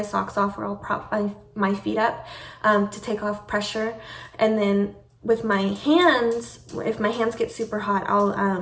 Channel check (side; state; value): both; identical; correlation 1.00